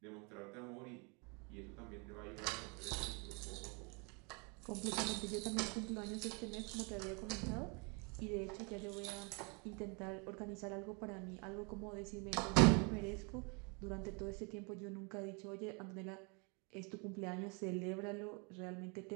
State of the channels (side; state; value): left; quieter; 32.6 dB